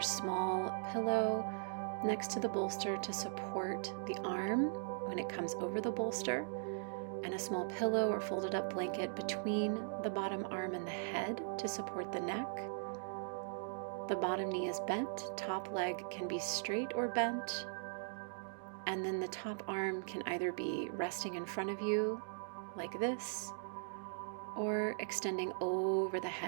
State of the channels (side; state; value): left; silent; digital silence